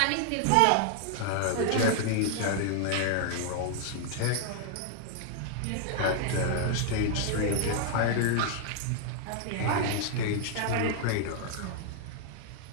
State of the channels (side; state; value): both; different; correlation 0.00